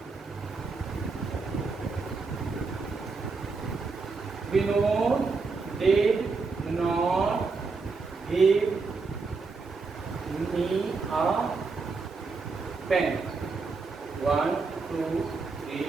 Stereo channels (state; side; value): quieter; left; 4.3 dB